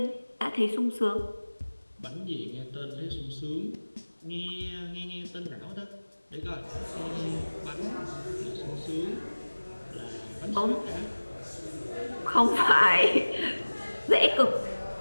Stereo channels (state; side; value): inverted; both; correlation -1.00